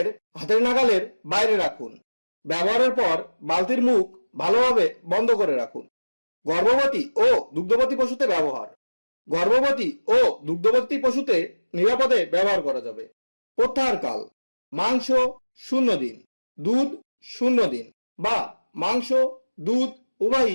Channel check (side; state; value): both; inverted; correlation -1.00